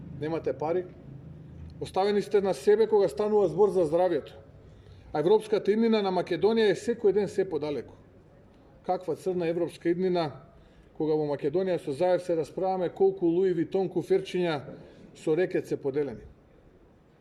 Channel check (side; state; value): both; identical; correlation 1.00